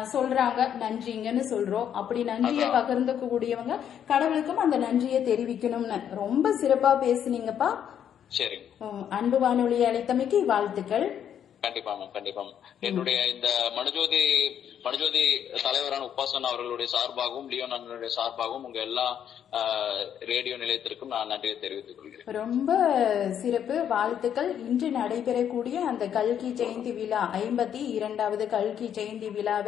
சொல்றாங்க, நன்றிங்கன்னு சொல்றோம். அப்படி நன்றியை பகிர்ந்து கூடியவங்க கடவுளுக்கும் அந்த நன்றியை தெரிவிக்கணும்னு ரொம்ப சிறப்பா பேசுனீங்கப்பா. சரி, அன்பு வானொலி அழைத்தமைக்கு வாழ்த்துக்கள். கண்டிப்பா கண்டிப்பா. என்னுடைய இந்த மனுஜோதி தலைவரான உபாசனா அவர்களுடைய சார்பாகவும் லியோன் அண்ணனுடைய சார்பாகவும் உங்க எல்லா ரேடியோ நிலையத்திற்கும் நான் நன்றியை தெரிவித்துக் கொள்கிறேன். ரொம்ப சிறப்பு, வாழ்த்துக்கள். இன்று நடைபெறக்கூடிய அந்த கல்கி ஜெயந்தி விழா 52வது கல்கி ஜெயந்தி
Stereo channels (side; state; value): right; quieter; 9.2 dB